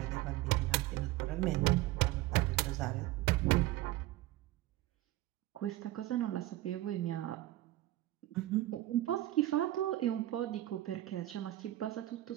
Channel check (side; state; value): left; quieter; 16.0 dB